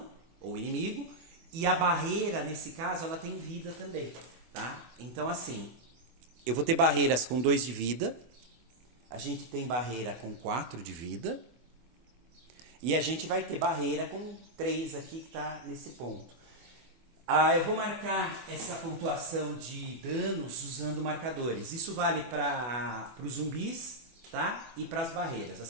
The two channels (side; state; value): left; late; 24 ms